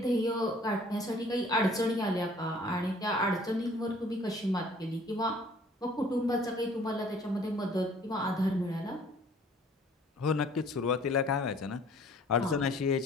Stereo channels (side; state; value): both; normal; correlation 0.55